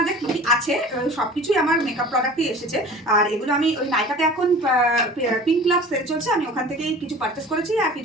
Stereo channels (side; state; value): both; normal; correlation 0.42